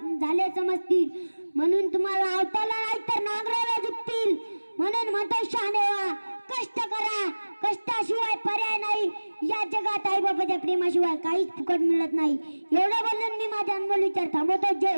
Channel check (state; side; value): inverted; both; correlation -1.00